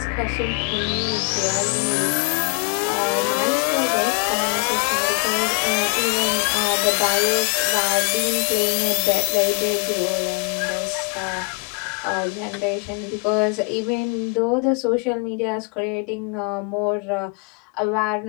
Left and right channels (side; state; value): right; quieter; 34.6 dB